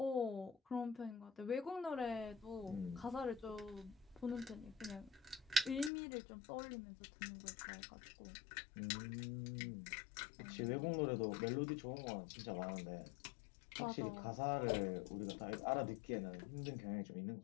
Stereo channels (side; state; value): right; drops out; at 5.9 s